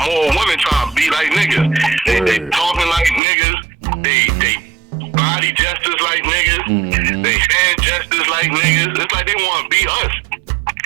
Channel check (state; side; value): drops out; left; at 3.2 s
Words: more women trying to be like niggas. They talking like niggas. They body gestures like niggas. They hand gestures like niggas. It's like they want to be us.